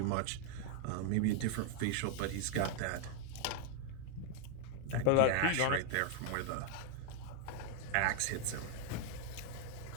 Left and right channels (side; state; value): both; different; correlation 0.01